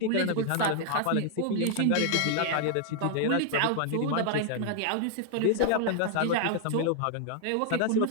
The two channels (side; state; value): both; different; correlation 0.00